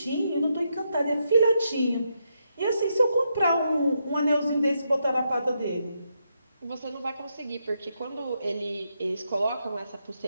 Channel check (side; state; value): both; inverted; correlation -0.81